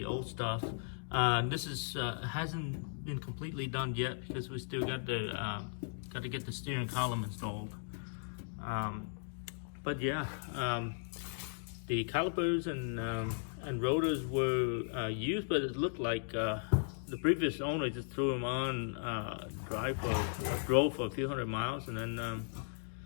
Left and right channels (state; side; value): silent; right; digital silence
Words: old stuff. This is hasn't been completely done yet because we still got to get the steering column installed. But yeah, the calipers and rotors were used, but it looked like the previous owner just threw them on, drove for a few hundred miles, and